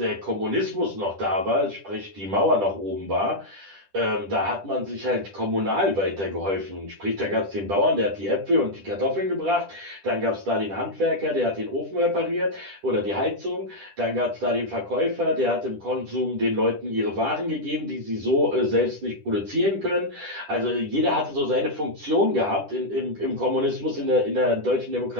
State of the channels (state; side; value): late; left; 10 ms